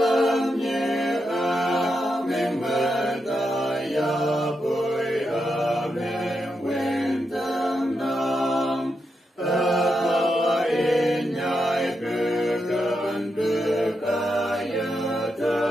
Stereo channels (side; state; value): both; normal; correlation 0.85